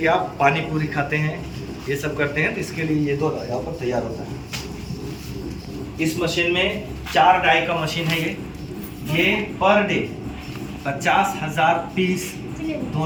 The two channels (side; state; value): both; identical; correlation 1.00